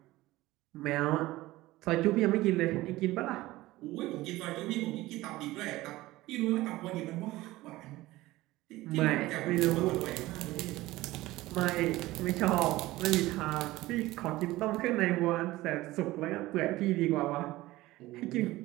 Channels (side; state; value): left; quieter; 18.0 dB